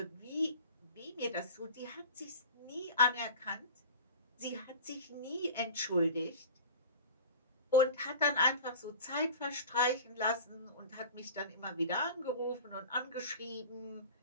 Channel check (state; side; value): inverted; both; correlation -0.37